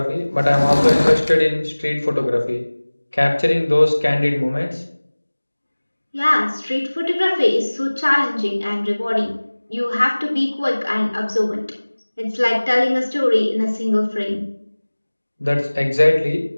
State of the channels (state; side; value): inverted; both; correlation -1.00